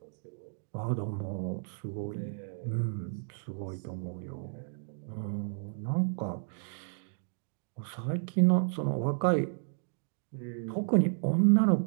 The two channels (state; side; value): silent; left; digital silence